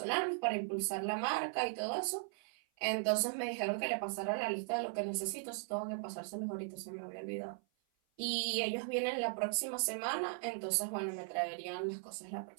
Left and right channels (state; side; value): silent; left; 52 dB below the other